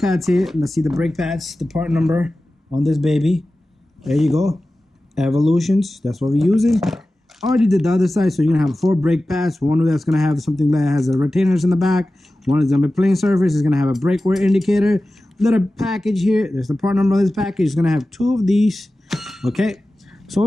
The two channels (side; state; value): both; normal; correlation 0.95